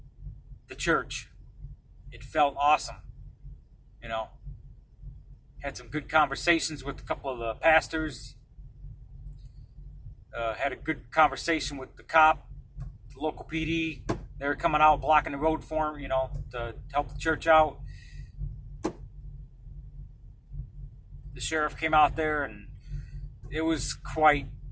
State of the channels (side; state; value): both; identical; correlation 1.00